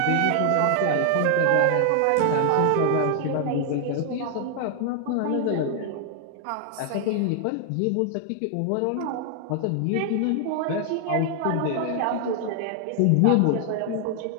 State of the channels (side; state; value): both; different; correlation 0.00